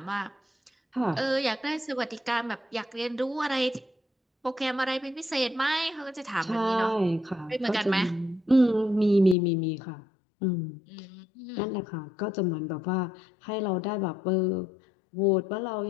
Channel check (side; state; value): right; drops out; at 9.3 s